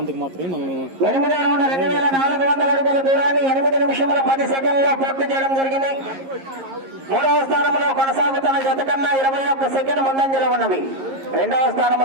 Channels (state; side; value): late; left; 11 ms